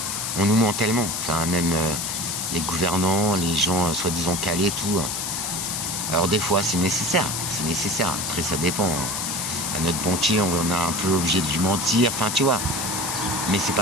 On nous ment tellement, enfin même les gouvernants, les gens soi-disant calés, tout. Alors des fois, c'est nécessaire. Après, ça dépend. À notre banquier, on est un peu obligé de lui mentir. Enfin, tu vois. Mais c'est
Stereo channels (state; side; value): noise; left; hiss, 2 dB below the sound